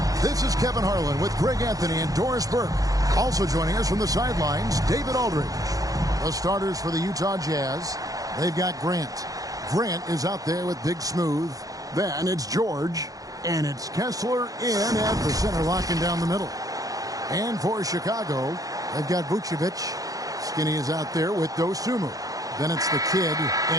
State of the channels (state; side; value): late; left; 0.17 ms